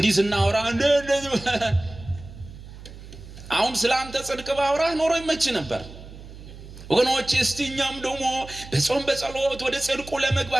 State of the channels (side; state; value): right; noise; hum, 16 dB below the sound